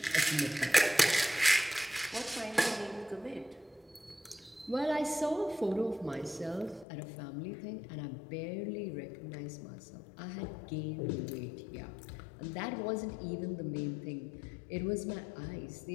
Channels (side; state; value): right; drops out; at 6.9 s